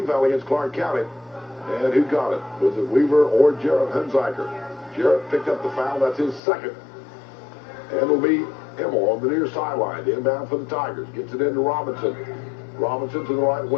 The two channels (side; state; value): right; drops out; at 6.4 s